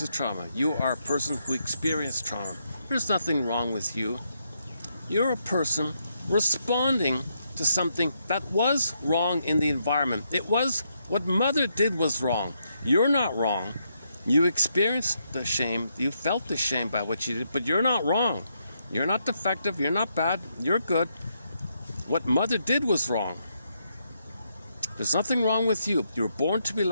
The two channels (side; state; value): both; inverted; correlation -0.79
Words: trauma. You are a person who experienced trauma. There's nothing wrong with you. You're a person responding to something that was wrong in the environment. It was what mother did was wrong. You're not wrong. You experienced the shame. You felt the shame by what you did, but you're not wrong. You're not defective. You're not bad. You're good. What mother did was wrong. There's nothing wrong with you. You were born to be